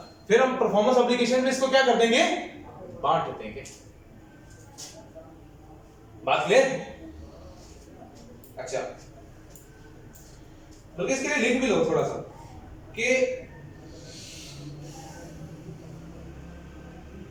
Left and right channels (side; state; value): both; identical; correlation 1.00